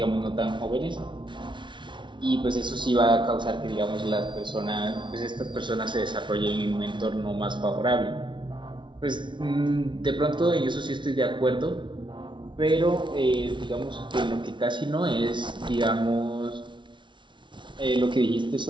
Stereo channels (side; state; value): left; late; 0.24 ms